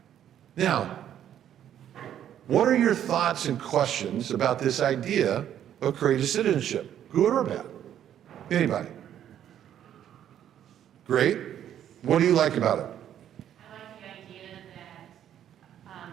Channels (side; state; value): left; quieter; 10.4 dB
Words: Now, what are your thoughts and questions about this idea of courageous citizenship? Good or bad? Anybody? Great. What do you like about it? I like the idea